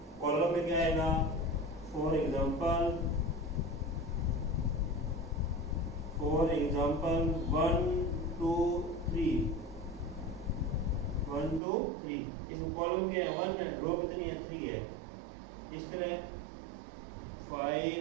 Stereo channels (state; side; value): drops out; left; at 11.6 s